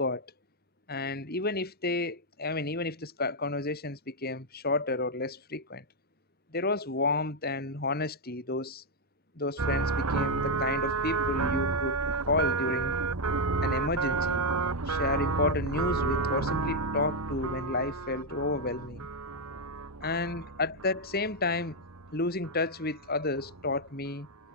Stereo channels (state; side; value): normal; both; correlation 0.01